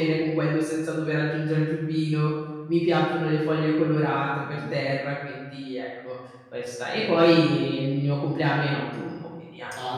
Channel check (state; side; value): identical; both; correlation 1.00